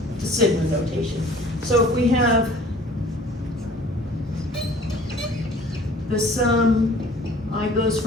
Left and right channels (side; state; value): both; normal; correlation 0.50